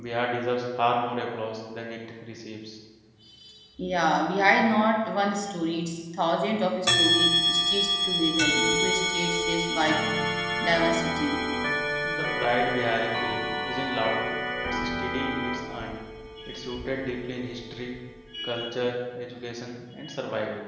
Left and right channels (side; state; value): both; identical; correlation 1.00